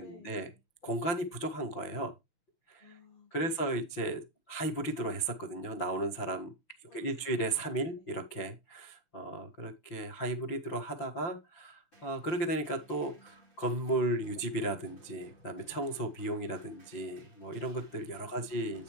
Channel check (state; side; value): late; right; 5.9 ms